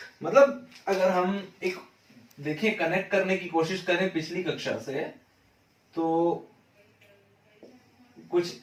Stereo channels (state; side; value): identical; both; correlation 1.00